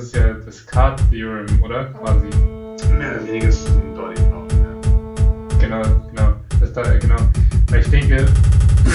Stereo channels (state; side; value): identical; both; correlation 1.00